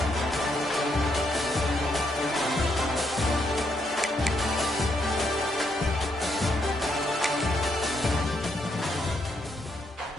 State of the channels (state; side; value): normal; both; correlation 0.76